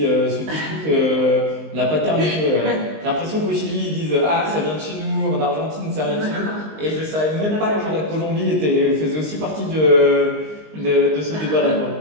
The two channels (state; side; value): late; left; 19 ms